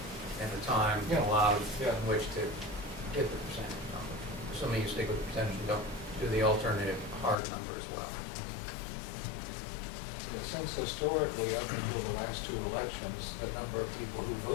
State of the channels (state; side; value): drops out; right; at 7.4 s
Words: and the time Yeah. allowed Yeah. in which to get the percentage number. Assuming you stick with the percentage, you don't do the alternative hard number as well. Yeah, since historically, up until the last 2 elections, the number of people who